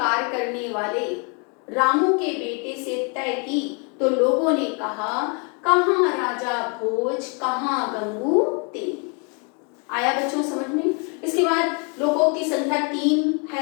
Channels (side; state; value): right; quieter; 36.1 dB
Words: करने वाले रामू के बेटे से तय की, तो लोगों ने कहा कहाँ राजा भोज कहाँ गंगू तेरी। आया बच्चों समझ में। इसके बाद लोकोक्ति संख्या 3